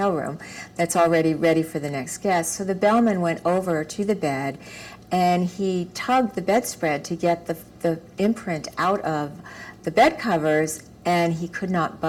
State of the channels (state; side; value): identical; both; correlation 1.00